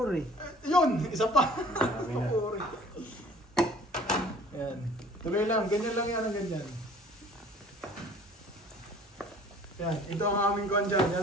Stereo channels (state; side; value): normal; both; correlation 0.51